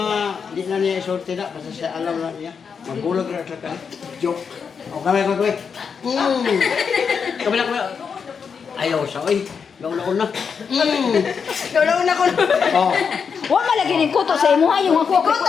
Di na niya isorte na. Basta siya alam na niya. Magbulag na siya ka. Joke. O kamay ko. Kamay. Ayaw siya. Uy, gauna-una. Gaulaw ko. Oh. Wa malagi ni kuto sa imo ha yung ako. Kuto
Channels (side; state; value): right; quieter; 6.2 dB